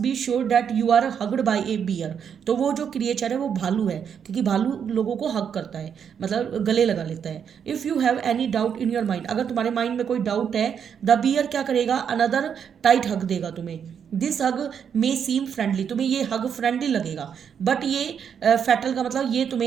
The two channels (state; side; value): quieter; left; 7.7 dB